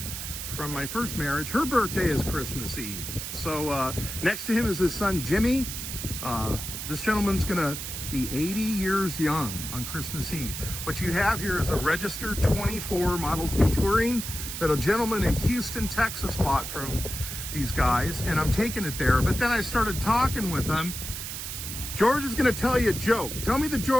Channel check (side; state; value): right; noise; hiss, 6 dB below the sound